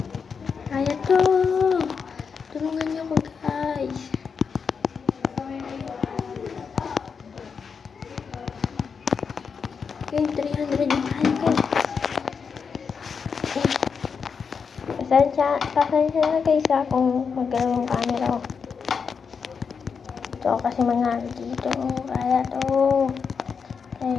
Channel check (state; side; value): quieter; right; 5.9 dB